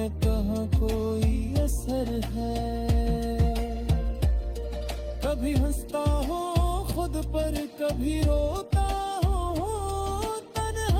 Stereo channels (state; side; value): identical; both; correlation 1.00